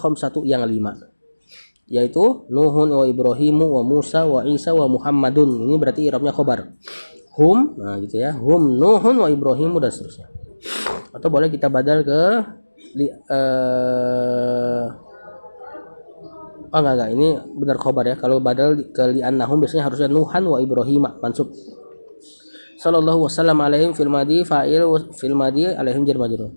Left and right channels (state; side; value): inverted; both; correlation -1.00